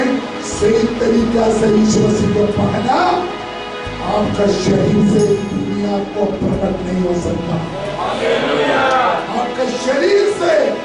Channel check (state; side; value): identical; both; correlation 1.00